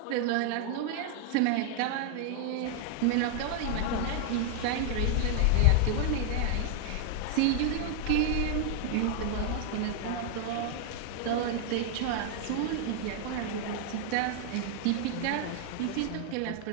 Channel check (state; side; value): different; both; correlation 0.00